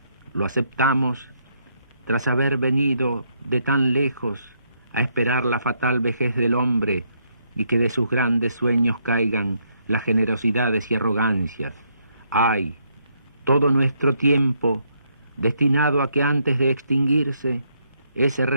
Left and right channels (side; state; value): both; inverted; correlation -0.74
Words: Lo aceptamos tras haber venido de tan lejos a esperar la fatal vejez del hombre y que de sus grandes sueños caigan las generosidades y arrogancias. ¡Ay! Todo nuestro tiempo destinado a que antes de extinguirse ese